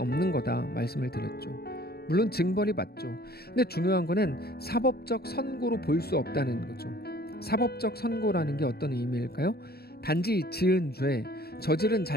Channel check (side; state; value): right; late; 0.46 ms